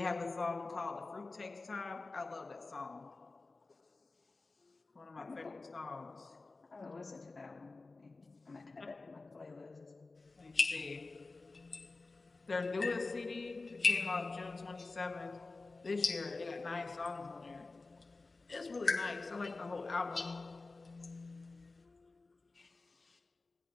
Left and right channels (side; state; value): right; quieter; 3.6 dB